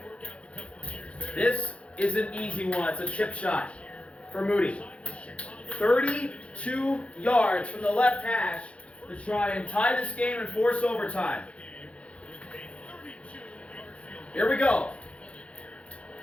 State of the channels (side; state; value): right; late; 0.062 ms